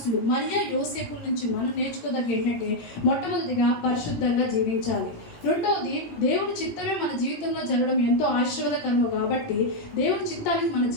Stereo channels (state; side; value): late; right; 17 ms